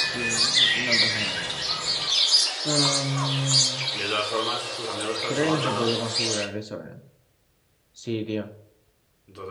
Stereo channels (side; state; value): both; identical; correlation 1.00